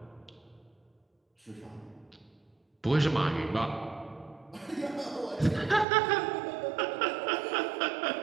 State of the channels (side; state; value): left; drops out; at 5.9 s